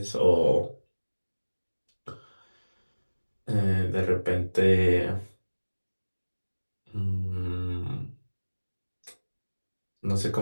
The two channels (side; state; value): both; inverted; correlation -1.00